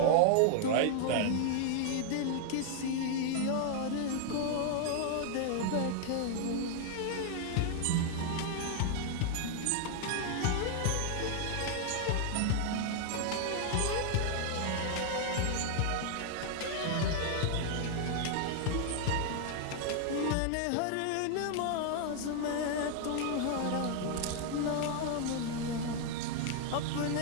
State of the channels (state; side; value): different; both; correlation 0.00